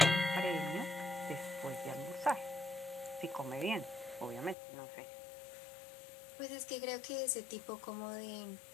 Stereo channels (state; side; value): drops out; right; at 4.5 s